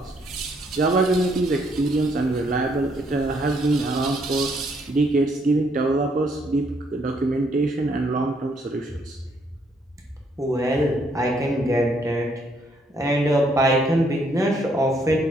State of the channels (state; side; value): normal; both; correlation 0.70